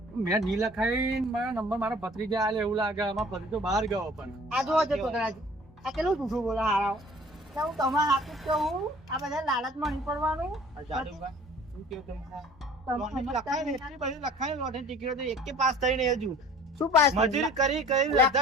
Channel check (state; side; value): normal; both; correlation 0.49